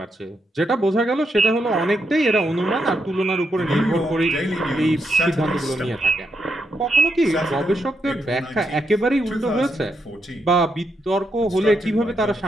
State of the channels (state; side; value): normal; both; correlation 0.80